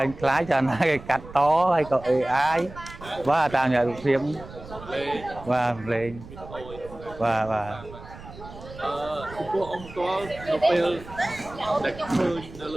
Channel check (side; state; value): right; noise; rumble, 16 dB below the sound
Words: khai cho nó cái cắt to hay có AI ba tao nhà được thêm và lên và ពួកអង្គតលនៅពេលដែលឃើញនៅល